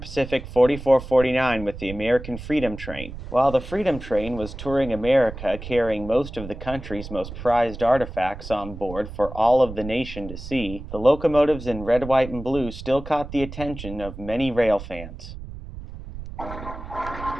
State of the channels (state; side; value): noise; right; rumble, 11 dB below the sound